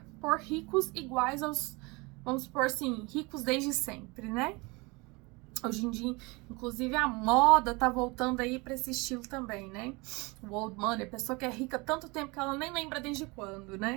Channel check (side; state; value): left; quieter; 26.2 dB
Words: por ricos iguais aos, vamos supor assim, ricos desde sempre, né? Hoje em dia, inclusive, a moda tá voltando aí para esse estilo também, né? O old money, a pessoa que é rica há tanto tempo que ela nem lembra desde quando,